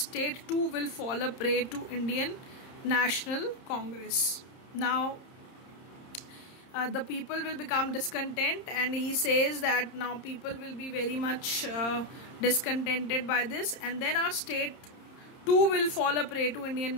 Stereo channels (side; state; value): right; late; 30 ms